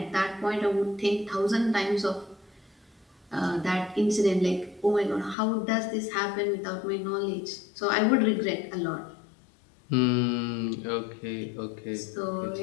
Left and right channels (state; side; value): drops out; right; at 5.4 s